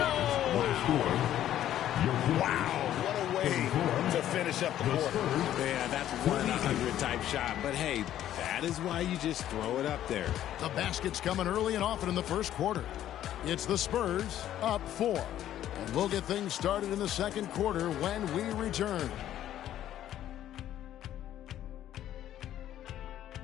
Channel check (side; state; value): right; quieter; 11.9 dB